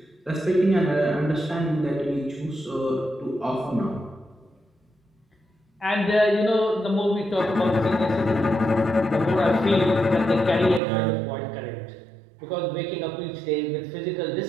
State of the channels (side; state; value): left; drops out; at 10.8 s